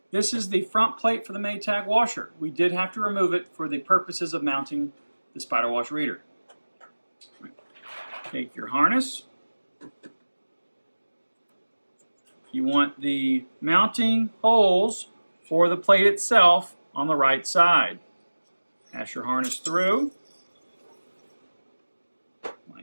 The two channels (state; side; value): inverted; both; correlation -1.00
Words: This is the front plate for the Maytag washer. We did have to remove it for the purposes of mounting the SpyderWash reader. Take your harness. You want the mounting holes for the plate itself on the right side. Pass your harness through,